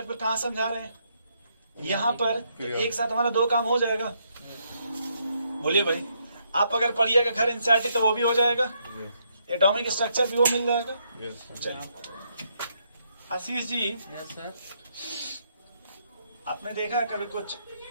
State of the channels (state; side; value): inverted; both; correlation -0.75